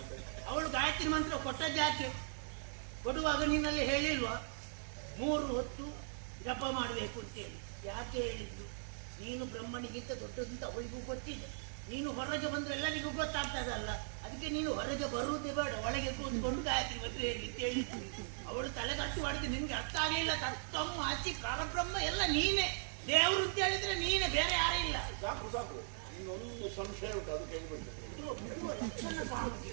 ಅವಳು ಗಾಯತ್ರಿ ಮಂತ್ರ ಕೊಟ್ಟದ್ಯಾಕೆ? ಕೊಡುವಾಗ ನೀನಲ್ಲಿ ಹೇಳಿಲ್ವಾ 3 ಹೊತ್ತು ಜಪ ಮಾಡಬೇಕು ಅಂತೇಳಿ? ಯಾಕೆ ಹೇಳಿದ್ದು? ನೀನು ಬ್ರಹ್ಮನಿಗಿಂತ ದೊಡ್ಡದಂತ ಅವಳಿಗೂ ಗೊತ್ತಿದೆ. ನೀನು ಹೊರಗೆ ಬಂದ್ರೆ ಎಲ್ಲರಿಗೂ ಗೊತ್ತಾಗ್ತದಲ್ಲ. ಅದಕ್ಕೆ ನೀನು ಹೊರಗೆ ಬರುವುದೇ ಬೇಡ, ಒಳಗೆ ಕೂತ್ಕೊಂಡು ಗಾಯತ್ರಿ ಮಂತ್ರ ಹೇಳಿ ಅಂತ ಹೇಳಿದ್ದು. ಅವಳು ತಲೆಗಟ್ಟು ಮಾಡಿದ್ದು ನಿನ್ಗೆ ಅರ್ಥ ಆಗಲಿಲ್ಲ. ತತ್ವಂ ಆಚಿ ಪರಬ್ರಹ್ಮ ಎಲ್ಲ ನೀನೇ. ದೇವರು ಅಂತ ಹೇಳಿದ್ರೆ ನೀನೇ, ಬೇರೆ ಯಾರೇ ಇಲ್ಲ. ಸಾಕು ಸಾಕು, ಇನ್ನೊಂದು ಸಂಶಯ ಉಂಟು, ಅದು ಕೇಳಿಬಿಡ್ತೇನೆ.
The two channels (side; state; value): left; silent; 52 dB below the other